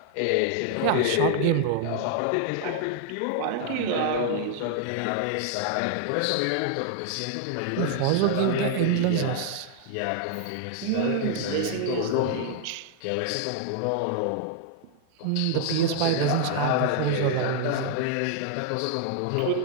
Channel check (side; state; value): both; different; correlation 0.00